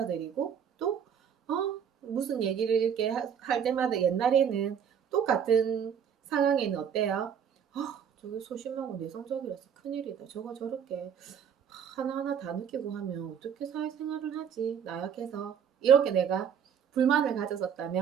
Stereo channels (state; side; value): quieter; left; 7.9 dB